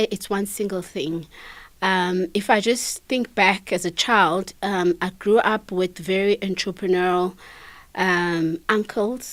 it's one single thing. If I just think back as a child, I grew up with very entrepreneurial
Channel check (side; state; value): both; identical; correlation 1.00